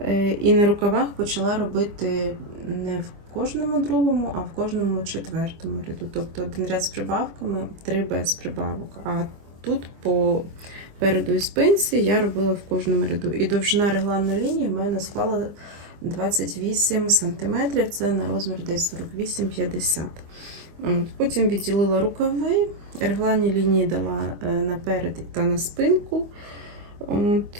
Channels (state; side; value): late; left; 25 ms